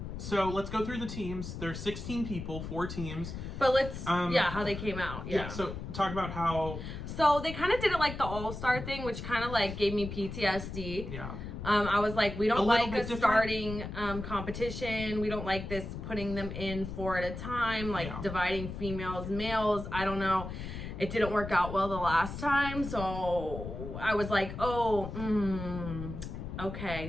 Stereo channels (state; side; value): noise; left; rumble, 8 dB below the sound